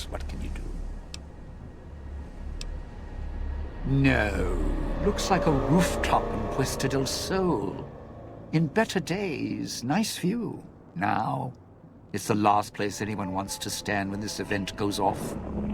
what can you do? No, looks like a rooftop in Puesta del Sol. In better days, nice view. Now, it's the last place anyone wants to stand when this event goes off.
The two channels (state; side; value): identical; both; correlation 1.00